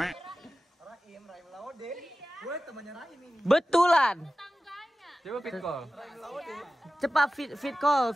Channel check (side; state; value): both; normal; correlation 0.95